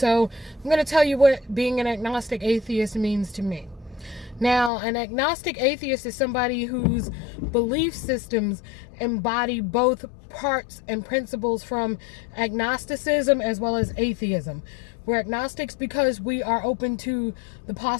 I'm going to tell you what being an agnostic atheist means to me. Now, an agnostic atheist is somebody whose belief systems embody both parts and principles from agnosticism as well as atheism. We're agnostics because we are open to the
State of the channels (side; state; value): right; drops out; at 4.7 s